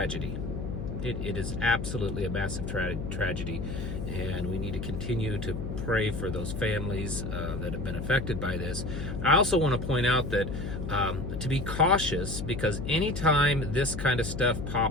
It is absolutely a massive tragedy, and we need to continue to pray for those families that have been affected by this. I also want to point out that to be cautious, because anytime this kind of stuff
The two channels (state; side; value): noise; left; hum, 5 dB below the sound